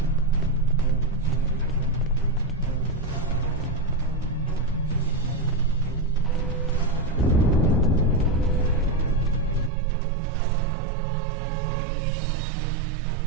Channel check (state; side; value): drops out; left; at 9.7 s